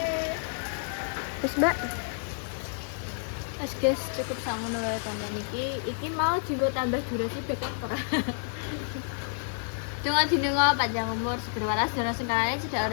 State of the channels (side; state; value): right; silent; digital silence